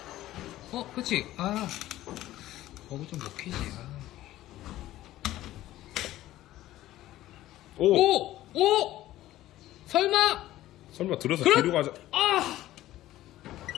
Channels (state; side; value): quieter; right; 14.9 dB